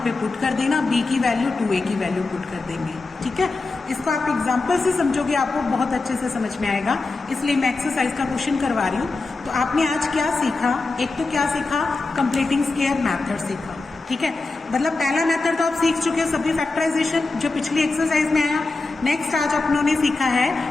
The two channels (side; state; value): right; quieter; 3.6 dB